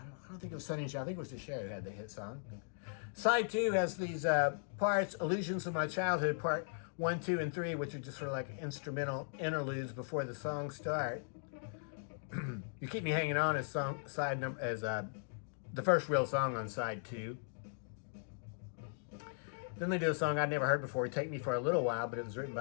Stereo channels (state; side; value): silent; right; digital silence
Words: don't think it was Sonny and Cher. I think it was the Cher who had the hit song. Side 2 has these parts, Illusions of My Childhood, part 1, 2, and 3, which are just sort of like instrumental interludes before the songs start. You Keep Me Hanging On as the first real song on side 2. Then they do a song I'd never heard before, Take Me for a Little While, but it was written